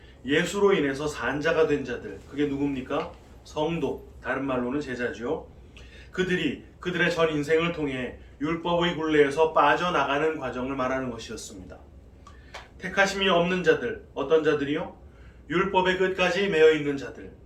예수로 인해서 산자가 된 자들, 그게 누굽니까? 성도, 다른 말로는 제자죠. 그들이 그들의 전 인생을 통해 율법의 굴레에서 빠져나가는 과정을 말하는 것이었습니다. 택하심이 없는 자들, 어떤 자들이요? 율법의 끝까지 매여 있는 자들.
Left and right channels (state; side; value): identical; both; correlation 1.00